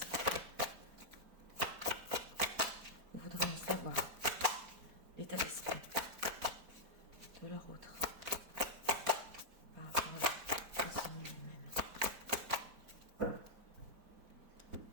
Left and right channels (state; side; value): late; left; 4.6 ms